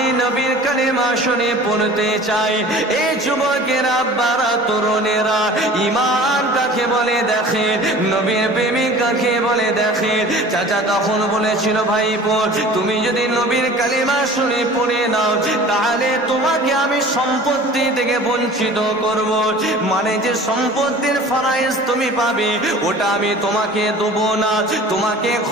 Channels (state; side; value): normal; both; correlation 0.43